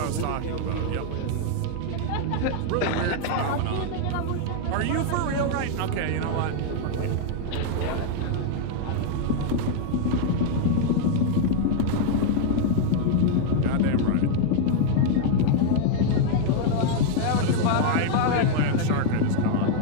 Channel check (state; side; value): different; both; correlation 0.00